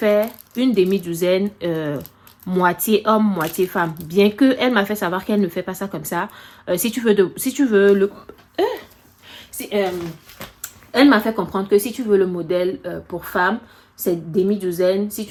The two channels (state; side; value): identical; both; correlation 1.00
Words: une demi-douzaine, moitié homme, moitié femme. Bien que elle m'a fait savoir qu'elle ne fait pas ça comme ça. Elle m'a fait comprendre que si tu veux le modèle pour femme, c'est demi-douzaine. Si